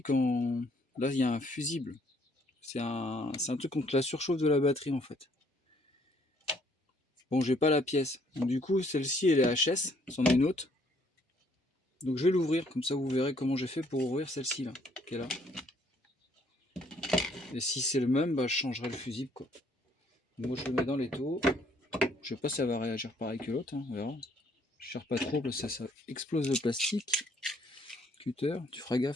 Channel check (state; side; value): normal; both; correlation 0.64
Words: là il y a un fusible. C'est un truc contre la surchauffe de la batterie en fait. Bon, j'ai pas la pièce. Donc, du coup, celle-ci elle est HS, c'en est une autre. Donc je vais l'ouvrir, comme ça vous verrez comment j'ai fait pour ouvrir celle-ci là, qui est là. Et si c'est le même, bah je changerai le fusible quoi. Moi je le mets dans l'étau. Je sais pas si ça va réagir pareil que l'autre, hein, on verra. Je cherche pas trop parce que ça explose le plastique. Cutter, tu feras